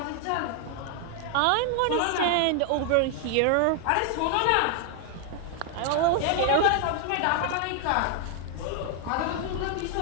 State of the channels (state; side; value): different; both; correlation 0.00